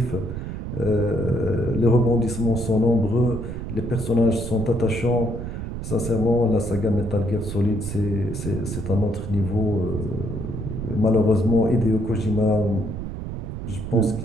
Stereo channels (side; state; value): right; noise; rumble, 6 dB below the sound